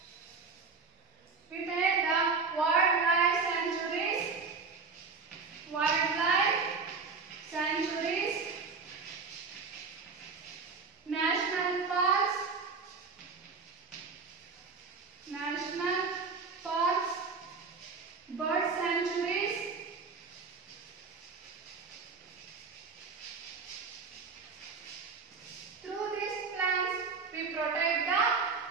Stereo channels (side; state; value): left; quieter; 4.7 dB